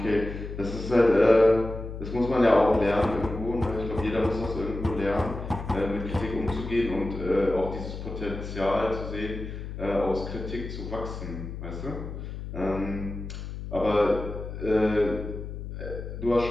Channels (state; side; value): noise; left; hum, 8 dB below the sound